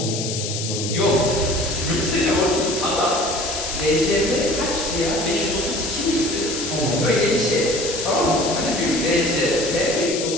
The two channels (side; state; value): left; noise; hiss, 5 dB below the sound